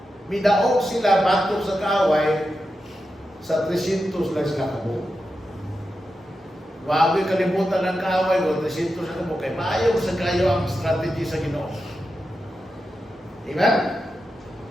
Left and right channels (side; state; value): both; normal; correlation 0.89